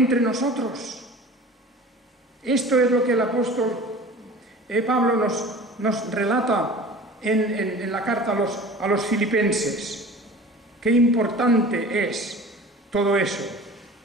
nosotros. Esto es lo que el apóstol Pablo nos relata en la carta a los filipenses. Qué importante es todo eso.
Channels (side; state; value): both; normal; correlation 0.41